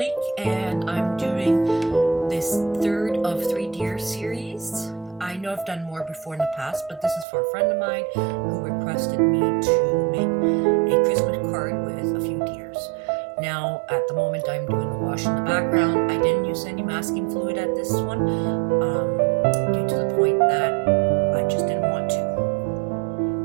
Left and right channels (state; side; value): drops out; left; at 7.2 s